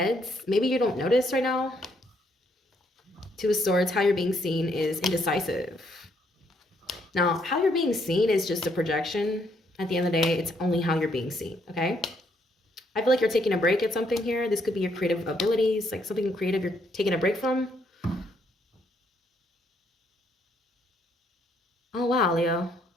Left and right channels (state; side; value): normal; both; correlation 0.71